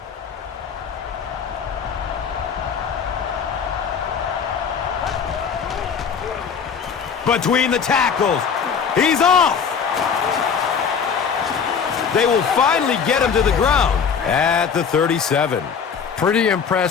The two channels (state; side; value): quieter; right; 6.6 dB